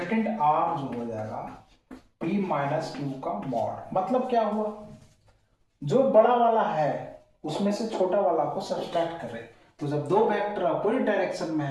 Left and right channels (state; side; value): identical; both; correlation 1.00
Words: R जो हो जाएगा P माइनस क्यू का मॉड, मतलब क्या हुआ, जो बड़ा वाला है उसमें से छोटा वाला को सब्ट्रैक्ट करें। तो जब दो वेक्टर अपोजिट डायरेक्शन में